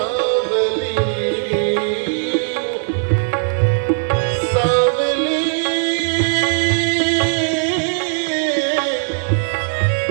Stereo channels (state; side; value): silent; left; digital silence